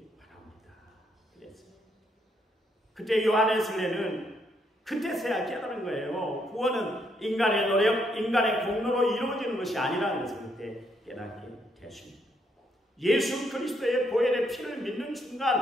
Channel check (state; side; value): normal; both; correlation 0.74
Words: 바랍니다. 그랬어요. 그때 요한에서는 그때서야 깨달은 거예요. 구원은 인간의 노력, 인간의 공로로 이루어지는 것이 아니라는 것을 그때 깨닫게 되었습니다. 예수 그리스도의 보혈의 피를 믿는